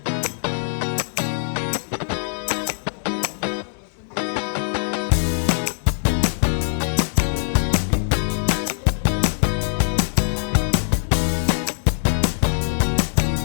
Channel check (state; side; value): silent; right; digital silence